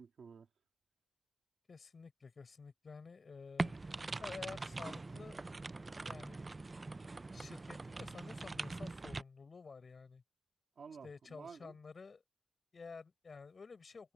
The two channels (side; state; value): both; normal; correlation 0.95